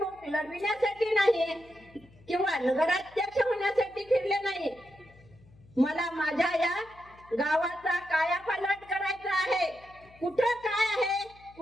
लढविण्यासाठी नाही किंवा नगराध्यक्ष होण्यासाठी फिरले नाही. मला माझ्या या गावाचा कायापालट करायचा आहे. कुठं काय आहे,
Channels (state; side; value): noise; left; hum, 26 dB below the sound